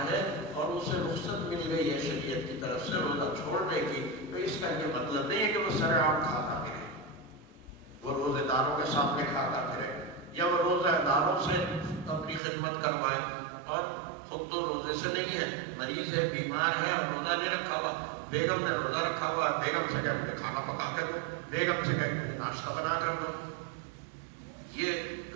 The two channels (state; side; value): drops out; left; at 12.4 s